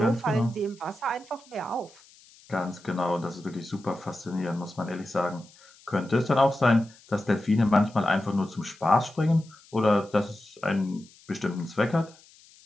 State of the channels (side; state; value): left; noise; hiss, 26 dB below the sound